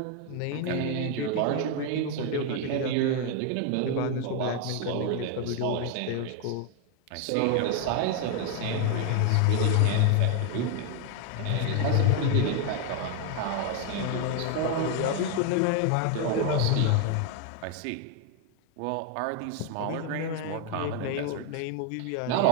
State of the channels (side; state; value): both; different; correlation 0.01